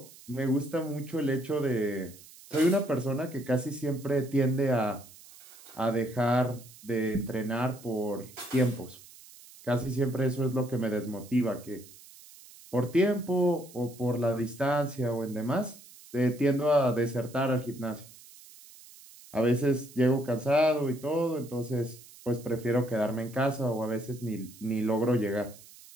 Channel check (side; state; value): right; noise; hiss, 21 dB below the sound